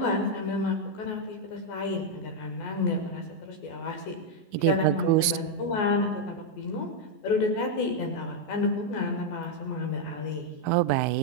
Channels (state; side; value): late; right; 14 ms